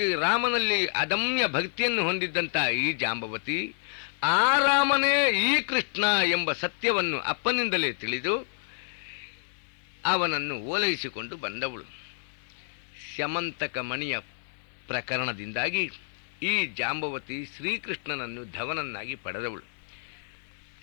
ರಾಮನಲ್ಲಿ ಅದಮ್ಯ ಭಕ್ತಿಯನ್ನು ಹೊಂದಿದ್ದಂಥ ಈ ಜಾಂಬವತಿ ಆ ರಾಮನೇ ಈ ಕೃಷ್ಣ ಎಂಬ ಸತ್ಯವನ್ನು ಅಪ್ಪನಿಂದಲೇ ತಿಳಿದು ಅವನನ್ನು ಓಲೈಸಿಕೊಂಡು ಬಂದವಳು. ಸ್ಯಮಂತಕ ಮಣಿಯ ಪ್ರಕರಣದಿಂದಾಗಿ ಈ ಜಾಂಬವತಿ ಶ್ರೀಕೃಷ್ಣನನ್ನು ಧವನನ್ನಾಗಿ ಪಡೆದವಳು.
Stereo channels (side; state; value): right; silent; 59 dB below the other